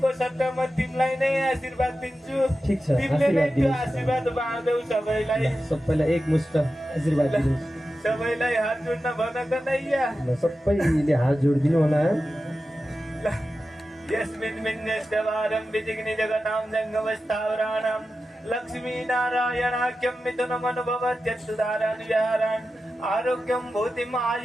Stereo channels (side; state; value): both; normal; correlation 0.92